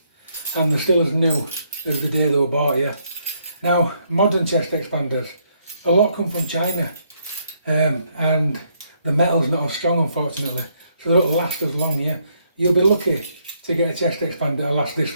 and they're still as new as the day they were bought, yeah. Now, modern chest expanders, a lot come from China, and the metal's not as strong, unfortunately, so they don't last as long, yeah. You'll be lucky to get a chest expander that'll last this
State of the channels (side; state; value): both; inverted; correlation -0.73